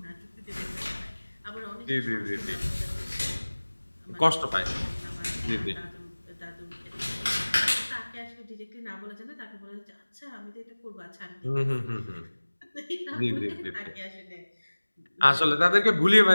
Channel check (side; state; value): both; inverted; correlation -1.00